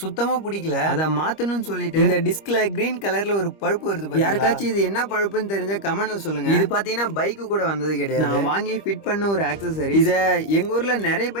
சுத்தமா பிடிக்கல. அதை மாத்தணும்னு சொல்லிட்டு இந்த டிஸ்க்ல கிரீன் கலர்ல ஒரு பழுப்பு வருது. யாருக்காச்சும் இது என்ன பழுப்புன்னு தெரிஞ்ச கமெண்ட்ல சொல்லுங்க. இது பாத்தீங்கன்னா பைக்கு கூட வந்தது கிடையாது. நான் வாங்கி ஃபிட் பண்ண ஒரு ஆக்சசரி. இத எங்க ஊர்ல நிறைய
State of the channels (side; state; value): right; late; 25 ms